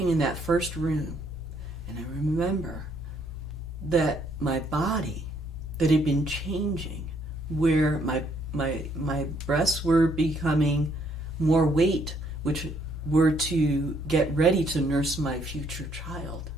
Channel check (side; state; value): both; normal; correlation 0.68